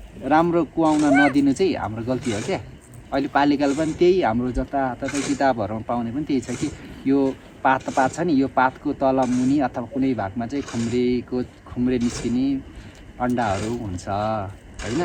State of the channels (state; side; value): identical; both; correlation 1.00